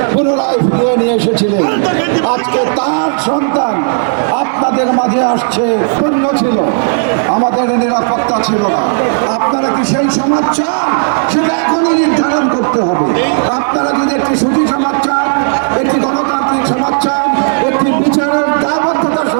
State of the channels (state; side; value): silent; left; digital silence